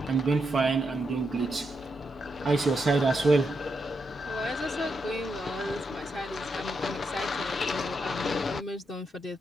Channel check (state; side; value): normal; both; correlation 0.83